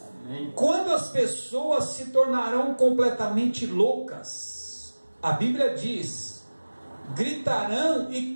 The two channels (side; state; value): both; inverted; correlation -1.00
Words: Amém. Quando as pessoas se tornarão completamente loucas, a Bíblia diz: gritarão e